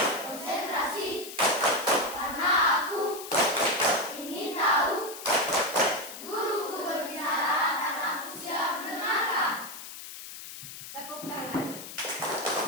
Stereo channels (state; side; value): noise; left; hiss, 12 dB below the sound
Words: konsentrasi karena aku ingin tahu guruku berbicara dan aku siap mendengarkan. Tepuk tangan.